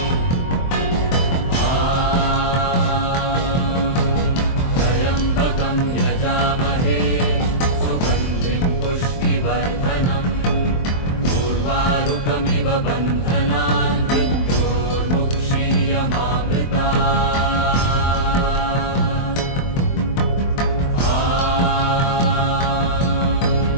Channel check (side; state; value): right; late; 23 ms